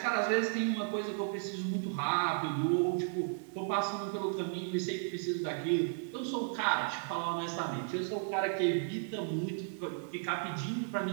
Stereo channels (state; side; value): silent; left; digital silence